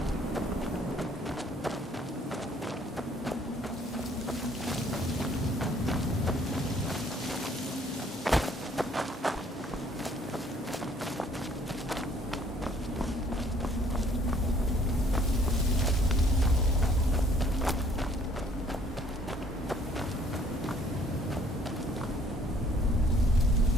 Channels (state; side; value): normal; both; correlation 0.60